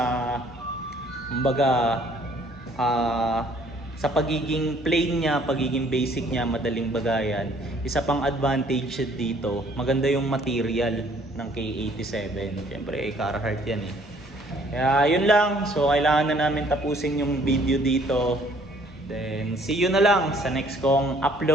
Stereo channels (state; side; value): normal; both; correlation 0.60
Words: kumbaga, sa pagiging plain niya, pagiging basic niya, madaling bagayan, isa pang advantage dito, maganda yung material ng K87. Siyempre, Carhartt yan eh. Kaya yun lang. So, kailangan na namin tapusin yung video dito. Then, see you na lang sa next kong